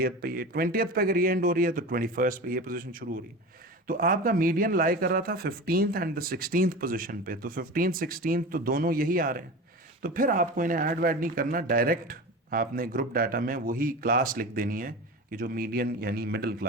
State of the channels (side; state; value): both; normal; correlation 0.30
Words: पे ये, 20th पे अगर ये एंड हो रही है तो 21st पे ये पोजीशन शुरू हो रही है। तो आपका मीडियन लाई कर रहा था 15th and the 16th position पे, तो 15th 16th तो दोनों यही आ रहे हैं। तो फिर आपको इन्हें ऐड वैड नहीं करना, डायरेक्ट आपने ग्रुप डाटा में वही क्लास लिख देनी है कि जो मीडियन यानी मिडिल